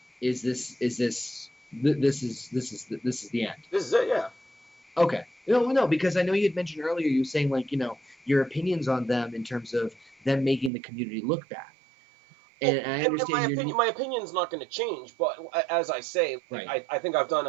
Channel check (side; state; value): left; drops out; at 10.7 s